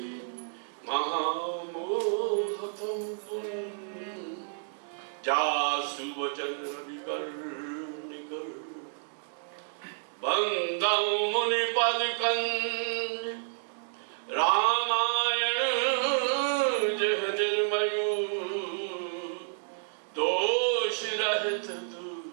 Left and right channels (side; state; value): left; silent; digital silence